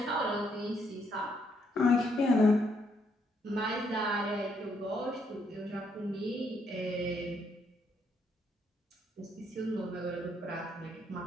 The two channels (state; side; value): normal; both; correlation 0.73